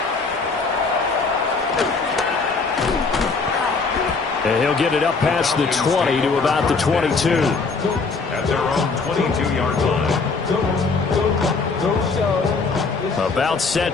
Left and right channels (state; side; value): quieter; right; 4.3 dB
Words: And he'll get it up past the 20 to about the 22. At their own 22-yard line. About